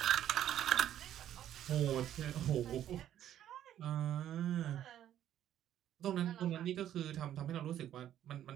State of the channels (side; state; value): left; quieter; 11.3 dB